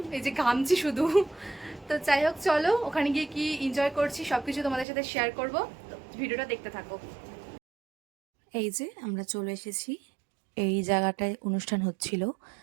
এই যে ঘামছি শুধু। তো যাই হোক, চলো ওখানে গিয়ে কি এনজয় করছি সব কিছু তোমাদের সাথে শেয়ার করব। তো ভিডিওটা দেখতে থাকো। এই যে আমরা চলে এসেছি, এই জায়গাটায় অনুষ্ঠান হচ্ছিল।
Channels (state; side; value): drops out; left; at 4.9 s